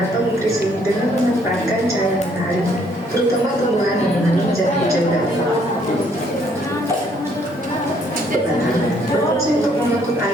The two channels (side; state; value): both; normal; correlation 0.66